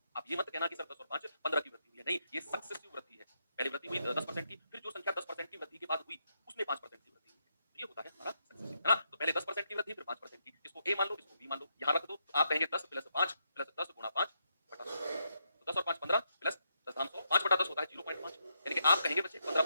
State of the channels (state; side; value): inverted; both; correlation -0.80